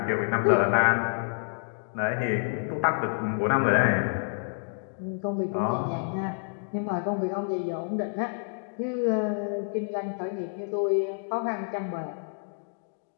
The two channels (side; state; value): right; silent; digital silence